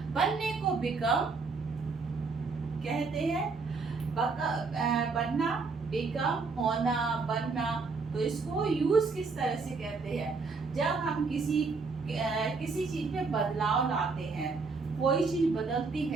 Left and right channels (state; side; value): quieter; left; 4.4 dB